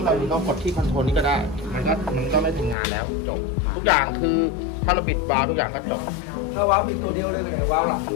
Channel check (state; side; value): drops out; right; at 2.8 s